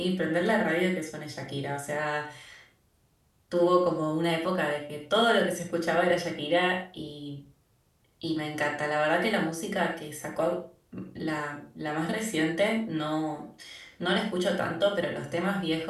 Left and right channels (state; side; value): identical; both; correlation 1.00